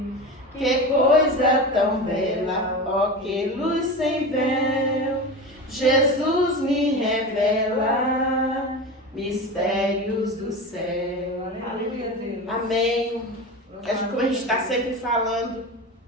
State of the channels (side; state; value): both; normal; correlation 0.26